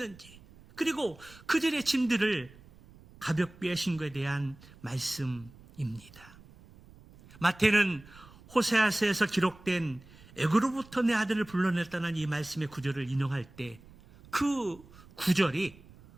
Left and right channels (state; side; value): noise; right; rumble, 22 dB below the sound